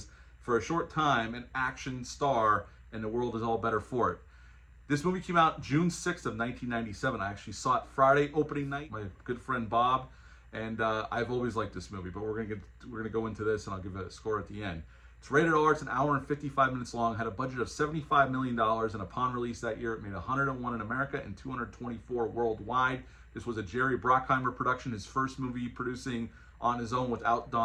for a short time, an action star, and the world is all better for it. This movie came out June 6th of 1997. I actually saw it Friday opening night. My good friend Bob, and I've always liked this movie, but we're gonna go into this, and I'll give it a score at the end. It's rated R. It's an hour and 55 minutes long. Had a budget of $75 million, and upon release that year, it made 101 in America and 224 worldwide. This was a Jerry Bruckheimer production, his first movie producing on his own without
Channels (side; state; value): both; identical; correlation 1.00